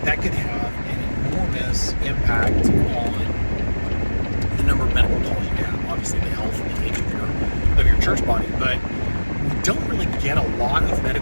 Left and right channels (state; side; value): inverted; both; correlation -1.00